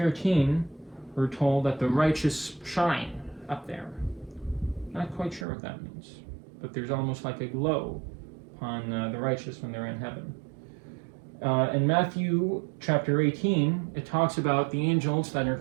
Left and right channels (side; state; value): left; drops out; at 5.5 s